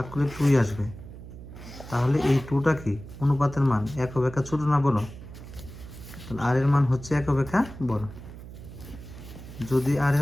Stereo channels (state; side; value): noise; right; hum, 14 dB below the sound